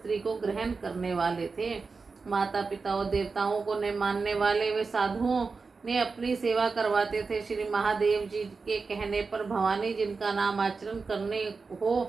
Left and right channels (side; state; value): left; quieter; 4.5 dB